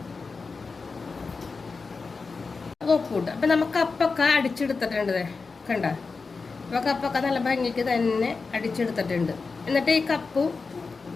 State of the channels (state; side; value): quieter; right; 4.4 dB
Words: ഒപ്പിട്ട് അപ്പൊ നമുക്ക് കപ്പൊക്കെ അടിച്ചെടുത്തിട്ടുണ്ട്. കണ്ട, അപ്പൊ കപ്പൊക്കെ നല്ല ഭംഗിക്ക് തന്നെ അടിച്ചെടുത്തിട്ടുണ്ട്. എന്നിട്ട് ഈ കപ്പും